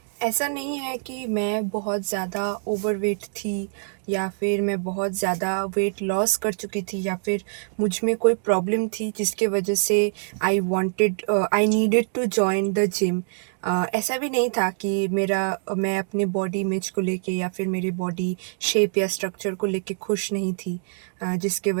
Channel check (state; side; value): silent; left; digital silence